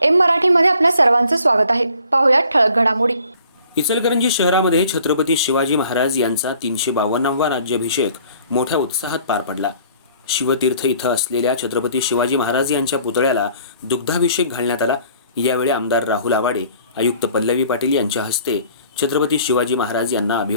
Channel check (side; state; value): both; inverted; correlation -0.55